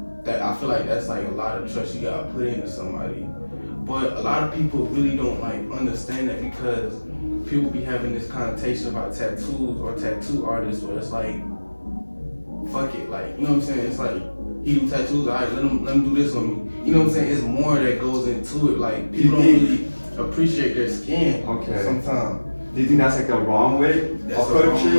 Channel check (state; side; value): inverted; both; correlation -1.00